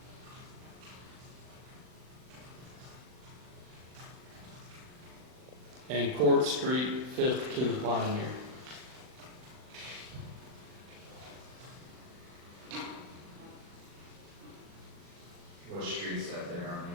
And Court Street, 5th to the Pioneer. what street's that there on the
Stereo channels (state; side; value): late; left; 39 ms